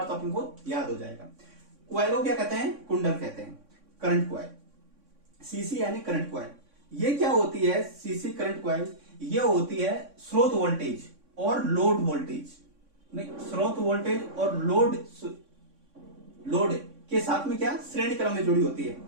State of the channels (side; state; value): left; late; 3.6 ms